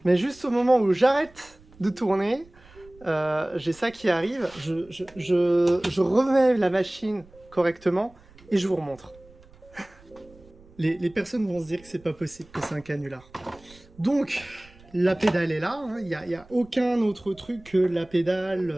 Mais juste au moment où j'arrête de tourner, j'ai ça qui arrive. Je remets la machine correctement et je vous remontre. Les personnes vont se dire que c'est pas possible, que c'est un canular. Donc, la pédale est là, hein. Il n'y a aucun autre truc que la pédale,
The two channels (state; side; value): noise; right; rumble, 25 dB below the sound